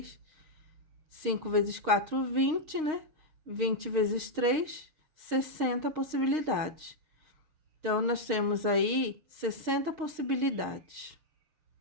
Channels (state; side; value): late; left; 6.4 ms